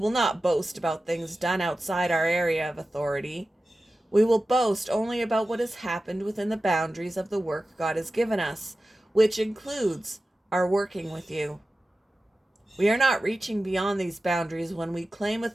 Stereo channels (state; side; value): normal; both; correlation 0.95